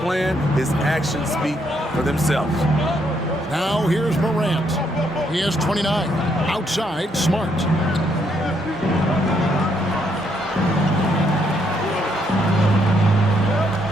his actions speak for themselves. Now here's Morant. He has 29. Outside, Smart.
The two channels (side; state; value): both; normal; correlation 0.74